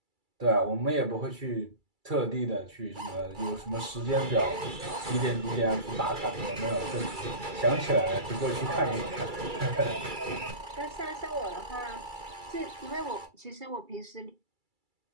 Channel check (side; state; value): left; late; 2.3 ms